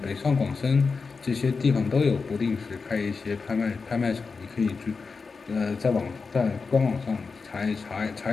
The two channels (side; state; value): right; quieter; 4.7 dB